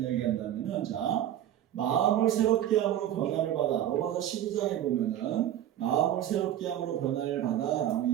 이야기한다면은, 자, 마음을 새롭게 함으로 변화를 받아. 로마서 12장에 보면은 마음을 새롭게 함으로 변화를 받아 라고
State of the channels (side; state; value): left; quieter; 11.5 dB